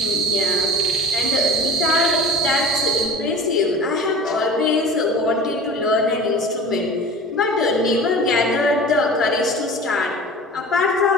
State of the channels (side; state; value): both; normal; correlation 0.38